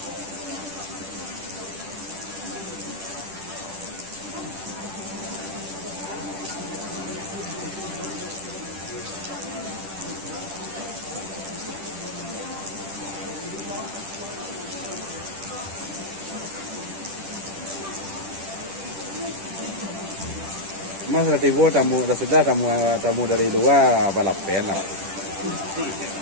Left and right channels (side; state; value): left; late; 10 ms